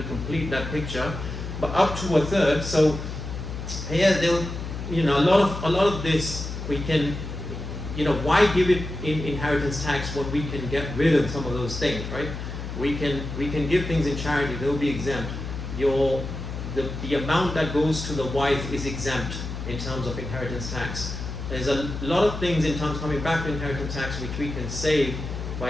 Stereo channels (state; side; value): noise; left; hum, 7 dB below the sound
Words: complete that picture. But up to a third. So here, you know, a lot of this we can. You know, why give it in inheritance tax when we can get rid of some of those things, right? We can give things in charity; they'll be exempt. The amount that goes to the wife is exempt in terms of inheritance tax. There's a lot of things in terms coming back to inheritance tax which we can save